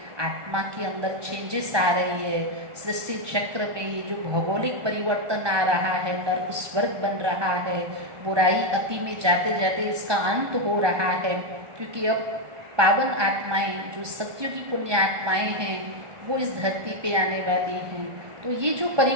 आत्मा के अंदर, चेंजेस आ रही है सृष्टि चक्र में, ये जो भौगोलिक परिवर्तन आ रहा है, नर्क स्वर्ग बन रहा है, बुराई अति में जाते जाते इसका अंत हो रहा है, क्योंकि अब पावन आत्माएं जो सत्युगी पुण्य आत्माएं हैं वो इस धरती पे आने वाली हैं। तो ये जो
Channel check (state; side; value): late; left; 1.2 ms